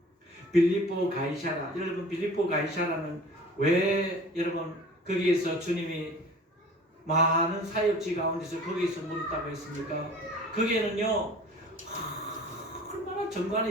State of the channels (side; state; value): both; normal; correlation 0.44